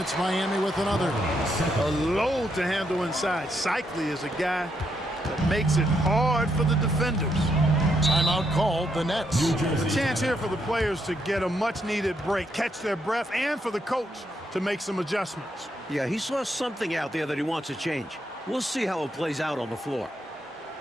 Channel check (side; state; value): both; normal; correlation 0.78